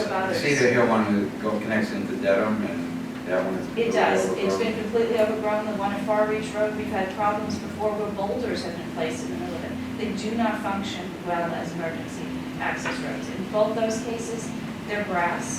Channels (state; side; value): identical; both; correlation 1.00